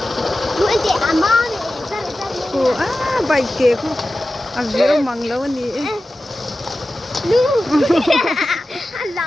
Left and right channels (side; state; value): both; normal; correlation 0.94